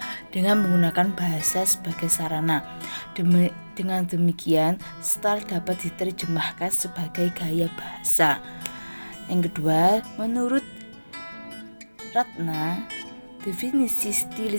dengan menggunakan bahasa sebagai sarana. Dengan demikian, style dapat diterjemahkan sebagai gaya bahasa. Yang kedua, menurut Ratna, definisi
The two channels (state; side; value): inverted; both; correlation -1.00